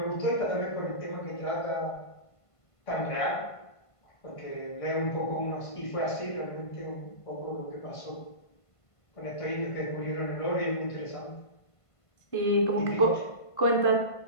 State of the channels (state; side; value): late; right; 1.5 ms